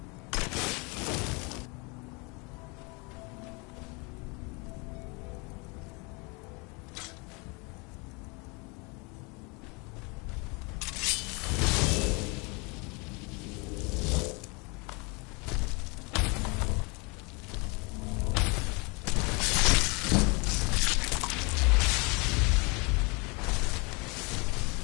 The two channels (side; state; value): right; quieter; 29.8 dB